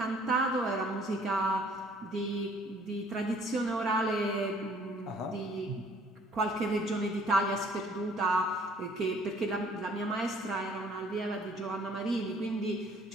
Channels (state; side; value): normal; both; correlation 0.58